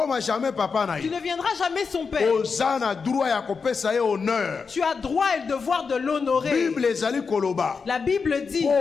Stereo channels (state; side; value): quieter; right; 5.2 dB